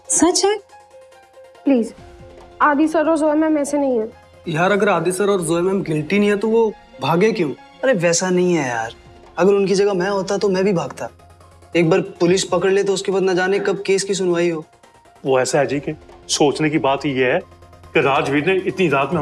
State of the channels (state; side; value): identical; both; correlation 1.00